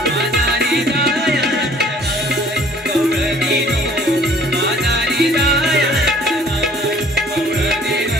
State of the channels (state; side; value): normal; both; correlation 0.55